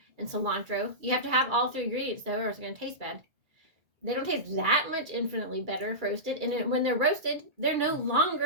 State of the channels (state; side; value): late; left; 2.3 ms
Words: and cilantro. You have to have all three ingredients though, or it's going to taste bad. They don't taste that much infinitely better if roasted, and when they're roasted, they're no